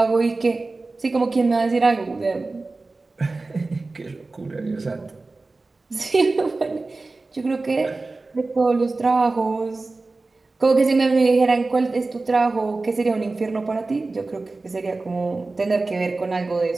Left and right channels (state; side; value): quieter; left; 3.5 dB